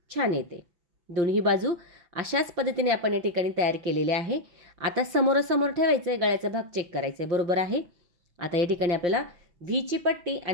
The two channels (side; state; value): left; late; 5.9 ms